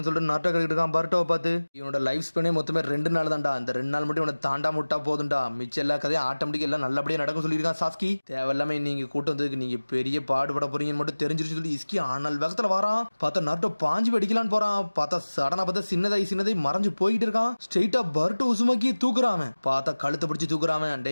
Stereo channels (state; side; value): inverted; both; correlation -1.00